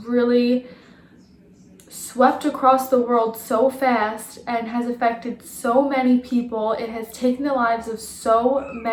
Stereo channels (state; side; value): identical; both; correlation 1.00